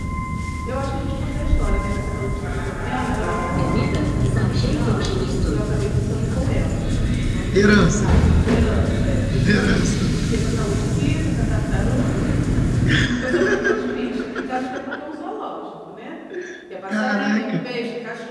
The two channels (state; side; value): identical; both; correlation 1.00